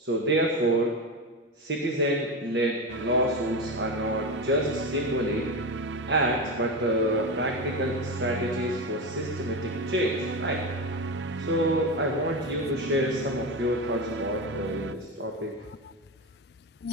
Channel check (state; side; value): normal; both; correlation 0.18